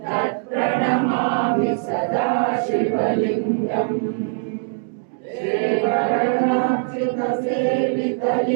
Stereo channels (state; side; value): silent; left; digital silence